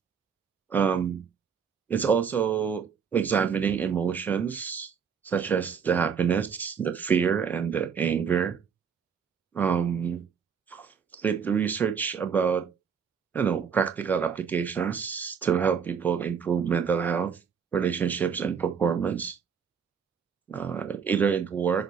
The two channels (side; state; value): left; quieter; 6.8 dB